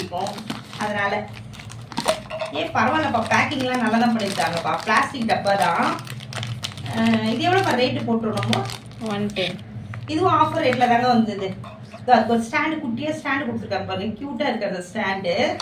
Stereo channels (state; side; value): identical; both; correlation 1.00